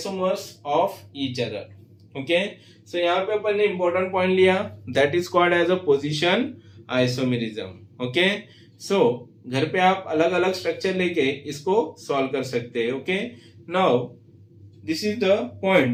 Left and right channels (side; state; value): both; identical; correlation 1.00